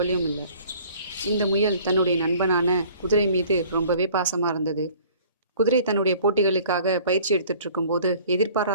இல்லை. இந்த முயல் தன்னுடைய நண்பனான குதிரை மீது ரொம்பவே பாசமாக இருந்தது. குதிரை தன்னுடைய போட்டிகளுக்காக பயிற்சி எடுத்துட்டு இருக்கும்போது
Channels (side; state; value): both; inverted; correlation -0.52